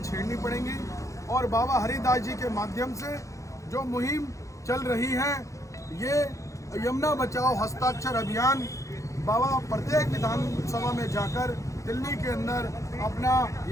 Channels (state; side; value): late; right; 0.15 ms